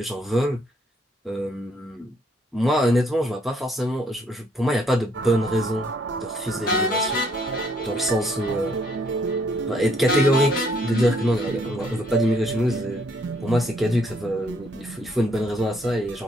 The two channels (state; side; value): normal; both; correlation 0.68